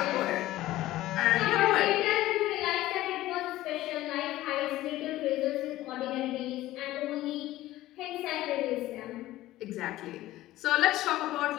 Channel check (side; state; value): right; quieter; 15.9 dB